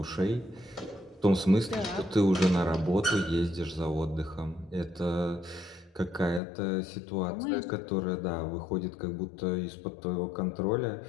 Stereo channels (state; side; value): drops out; right; at 6.4 s